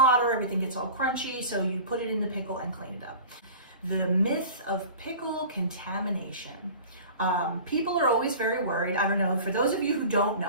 everything gets all crunchy, so you put it in the pickle and clean it up. The myth of pickle contamination. People are always very worried. I don't know, for those of you who don't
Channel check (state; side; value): inverted; both; correlation -0.39